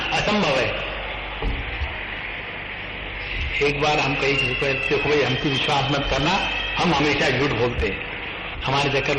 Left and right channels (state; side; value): identical; both; correlation 1.00